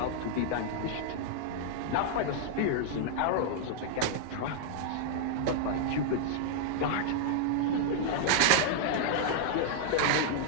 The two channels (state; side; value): different; both; correlation -0.01